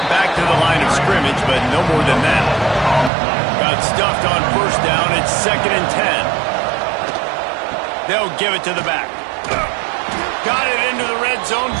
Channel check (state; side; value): drops out; left; at 3.1 s